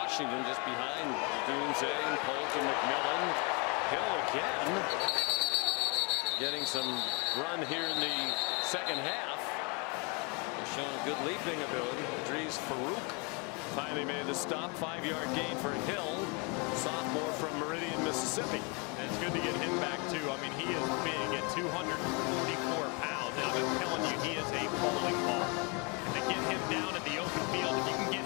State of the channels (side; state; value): right; quieter; 31.8 dB